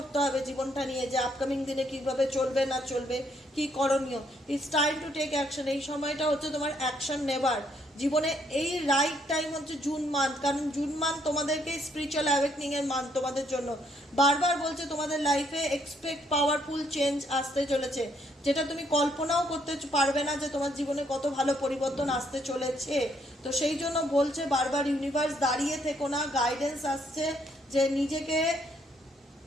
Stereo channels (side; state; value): both; normal; correlation 0.70